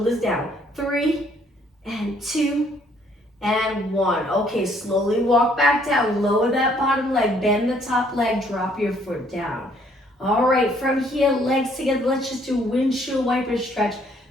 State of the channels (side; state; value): both; normal; correlation 0.64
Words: down. 3, and 2, and 1. Okay, slowly walk back down. Lower that bottom leg, bend the top leg, drop your foot down. All right, from here, legs together. Let's just do windshield wiper stretch.